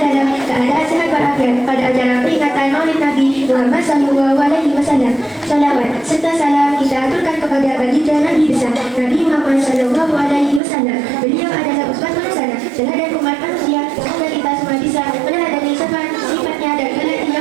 dalam keadaan sehat walafiat pada acara peringatan Maulid Nabi Muhammad SAW. Salawat serta salam kita aturkan kepada baginda Nabi besar Nabi Muhammad SAW. Beliau adalah uswatun hasanah, teladan umat manusia. Semoga kita semua bisa meneladani sifatnya dan kelak di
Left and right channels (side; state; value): left; drops out; at 10.6 s